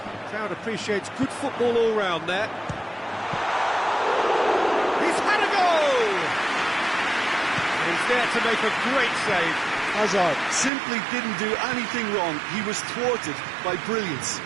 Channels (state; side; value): drops out; left; at 10.7 s